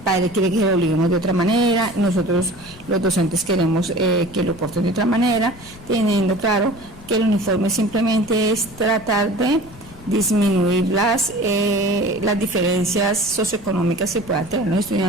quiere que lo obliguemos de otra manera, nosotros los docentes queremos que lo porten de otra manera, teniendo claro que el uniforme simplemente es tratar de disminuir las diferencias socioeconómicas que puedan tener los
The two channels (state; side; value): noise; left; rumble, 20 dB below the sound